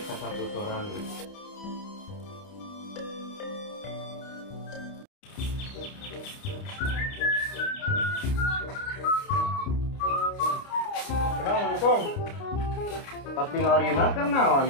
sasaputoran. Assalamualaikum. Tak tinggalina keur naon?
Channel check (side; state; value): right; late; 29 ms